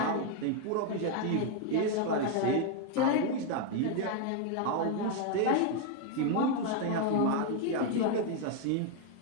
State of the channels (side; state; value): both; different; correlation 0.01